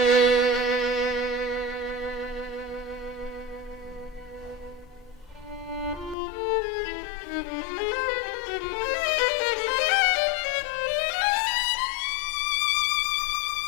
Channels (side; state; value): right; drops out; at 6.2 s